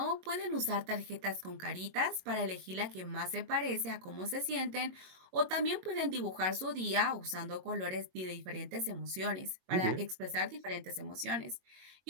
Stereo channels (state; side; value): late; left; 22 ms